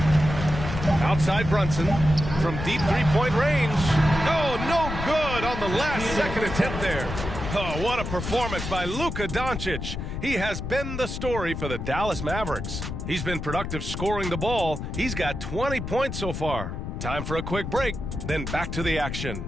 Outside Brunson from deep three-point range. Oh, no good on the last second attempt there. Oh, what a performance by Luka Doncic. He has been the story for the Dallas Mavericks. He's been productive scoring the ball. He's got 20 points so far. Time for a quick break, then back to the action.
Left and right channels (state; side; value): noise; left; rumble, 6 dB below the sound